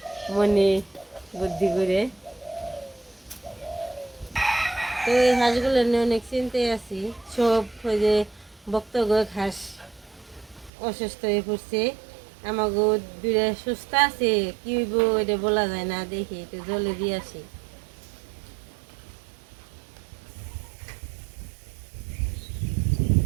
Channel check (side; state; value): left; drops out; at 10.7 s